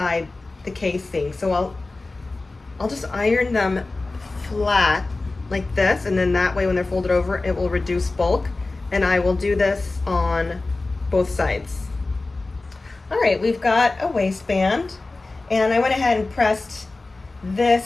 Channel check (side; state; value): right; quieter; 3.3 dB